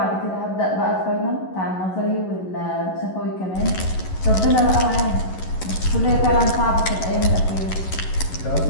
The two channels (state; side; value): late; right; 11 ms